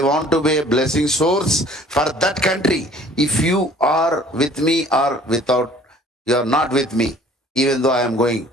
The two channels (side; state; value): both; normal; correlation 0.52